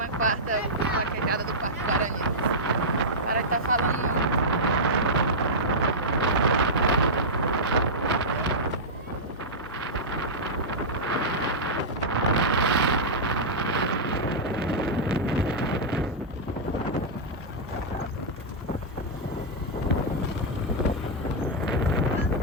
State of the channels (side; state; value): both; normal; correlation -0.10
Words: vaquejada do Parque Paranhos. O cara tá falando.